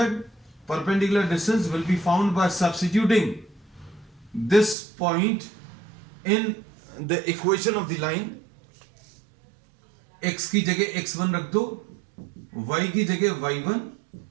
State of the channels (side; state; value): left; drops out; at 4.8 s